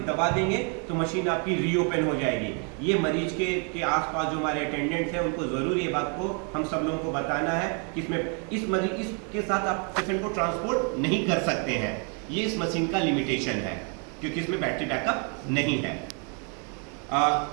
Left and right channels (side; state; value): left; quieter; 38.7 dB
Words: दबा देंगे तो मशीन आपकी रीओपन हो जाएगी। ये मरीज के आसपास जो हमारे अटेंडेंट्स हैं उनको ज़रूर ये बात को हम सब लोगों को बताना है कि इसमें इसके साथ आप पेशेंट को ट्रांसपोर्ट नहीं कर सकते हैं। ये इस मशीन का लिमिटेशन है क्योंकि इसमें बैटरी बैकअप नहीं है।